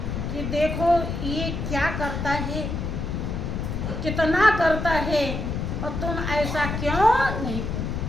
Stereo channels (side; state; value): left; noise; rumble, 3 dB below the sound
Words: कि देखो ये क्या करता है, कितना करता है, और तुम ऐसा क्यों नहीं करते।